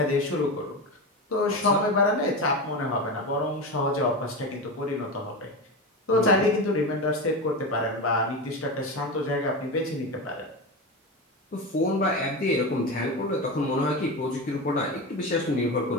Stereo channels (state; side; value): normal; both; correlation 0.21